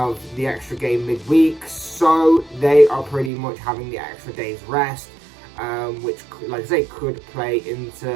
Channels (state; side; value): drops out; left; at 3.3 s